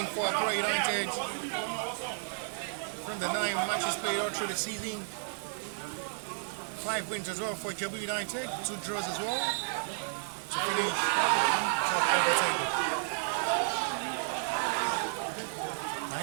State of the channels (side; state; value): left; silent; digital silence